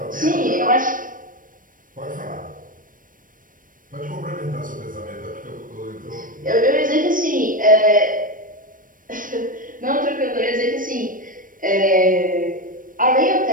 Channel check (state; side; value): late; left; 0.40 ms